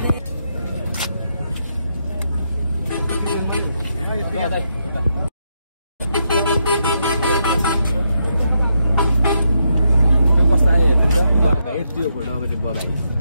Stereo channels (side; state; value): both; inverted; correlation -0.81